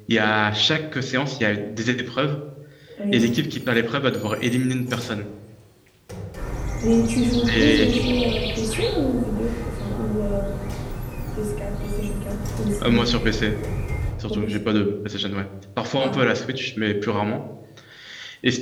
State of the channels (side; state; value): both; identical; correlation 1.00